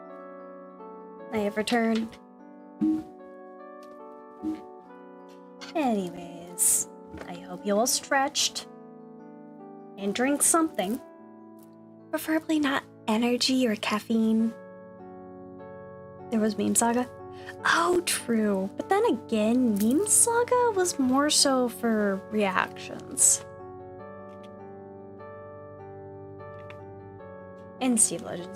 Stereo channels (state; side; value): identical; both; correlation 1.00